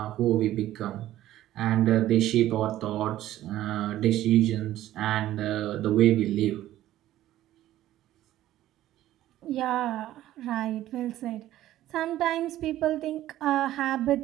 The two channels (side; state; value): left; quieter; 13.9 dB